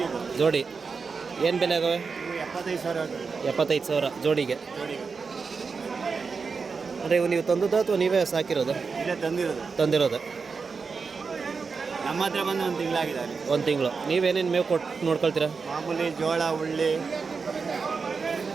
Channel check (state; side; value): quieter; left; 5.0 dB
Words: ಇದು. ಜೋಡಿ ಏನು ಬೆಲೆ ಆಗವೆ? ಇವು 75,000. 75,000 ಜೋಡಿಗೆ. ಅಂದರೆ ಇವು ನೀವು ತಂದದ್ದು ಅಥವಾ ನೀವೇ ಸಾಕಿರೋದು? ಇಲ್ಲೇ ತಂದಿರೋದು. ನಮ್ಮ ಹತ್ರ ಬಂದು 1 ತಿಂಗಳಾಗಿದೆ. 1 ತಿಂಗಳು. ನೀವೇನೇನು ಮೇವು ಕೊಟ್ಟು ನೋಡ್ಕೊಳ್ತೀರಾ? ಮಾಮೂಲಿ ಜೋಳ, ಉಳ್ಳಿ